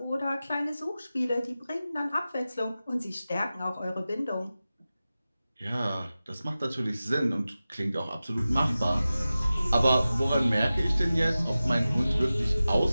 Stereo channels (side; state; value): both; inverted; correlation -0.95